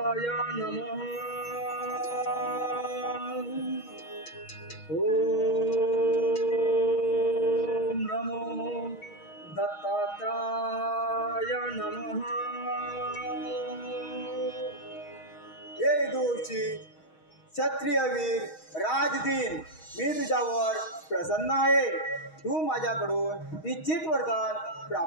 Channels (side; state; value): right; late; 6.3 ms